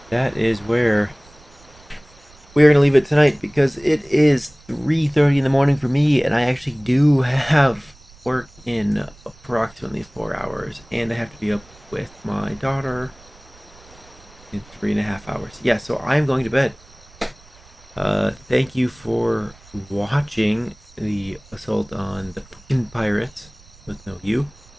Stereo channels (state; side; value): noise; right; rumble, 26 dB below the sound